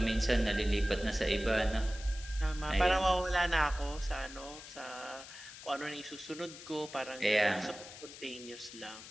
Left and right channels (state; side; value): noise; left; hiss, 14 dB below the sound